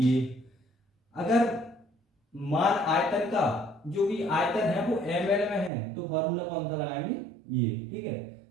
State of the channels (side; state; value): left; drops out; at 5.7 s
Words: अगर मान आयतन का जो भी आयतन है वो ml में है तो फॉर्मूला कौन सा लगाएंगे? ये। ठीक है,